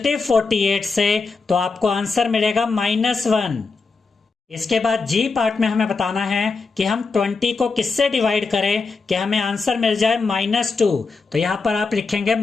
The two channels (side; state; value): right; quieter; 4.4 dB